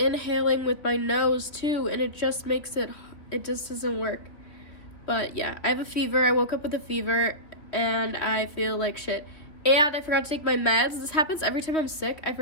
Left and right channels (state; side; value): late; right; 2.9 ms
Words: with my nose too, and it just doesn't work. But yeah, I have a fever. I woke up with a fever and I feel like shit. And I forgot to take my meds. This happens every time I'm sick. I